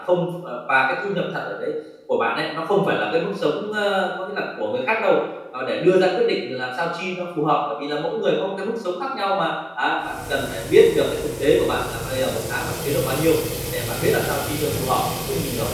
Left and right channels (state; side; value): identical; both; correlation 1.00